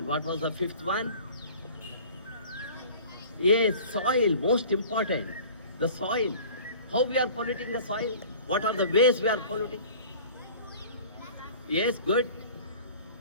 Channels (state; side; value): inverted; both; correlation -0.44